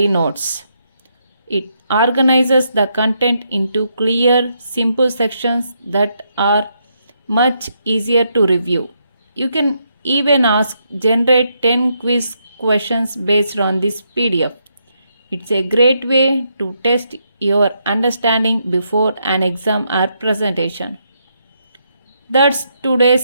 notes. It organizes the content into clear, simple sections that are much easier to review. You can even ask generate 10 quiz questions based on this PDF. It's a great way to test your understanding before an exam or presentation. That's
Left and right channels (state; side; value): inverted; both; correlation -0.78